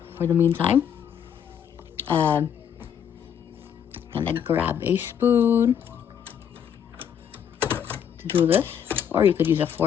for the meantime. Gonna grab a spoon to do this, or you could use a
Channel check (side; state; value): right; quieter; 8.5 dB